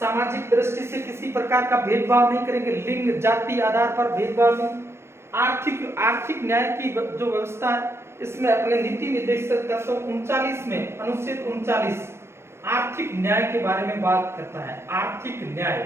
दृष्टि से किसी प्रकार का भेदभाव नहीं करेंगे, लिंग जाति आधार पर भेदभाव नहीं। आर्थिक न्याय की जो व्यवस्था है इसमें अपने नीति निर्देशक तत्व 39 में अनुच्छेद 39 आर्थिक न्याय के बारे में बात करता है। आर्थिक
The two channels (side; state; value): left; late; 0.12 ms